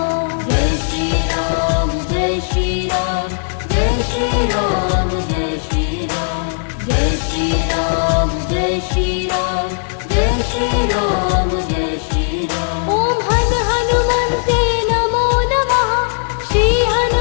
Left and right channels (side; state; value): right; silent; digital silence